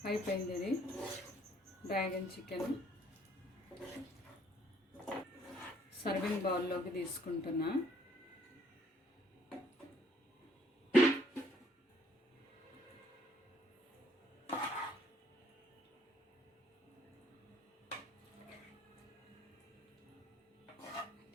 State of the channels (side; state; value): both; normal; correlation 0.64